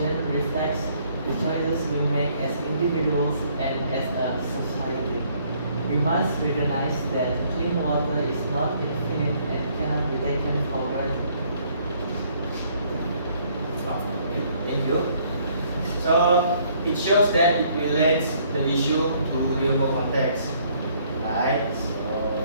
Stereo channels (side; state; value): both; inverted; correlation -0.64